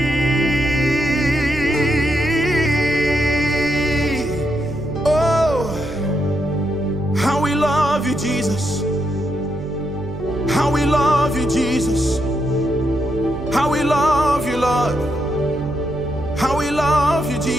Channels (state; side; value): noise; right; hum, 11 dB below the sound